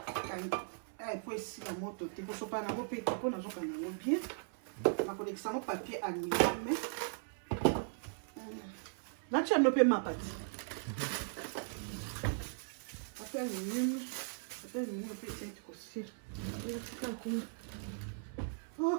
po esila moto te kosopana yango mpe te mpo nazokanga yango bien nakolekisa yango papier aluminium natia yango mpe mapa te papier aluminium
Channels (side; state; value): left; silent; 52 dB below the other